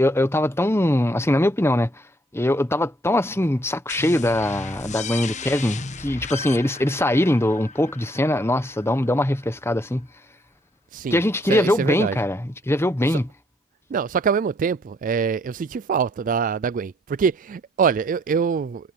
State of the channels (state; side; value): normal; both; correlation 0.67